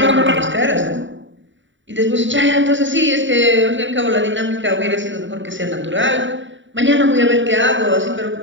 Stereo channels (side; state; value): left; late; 0.55 ms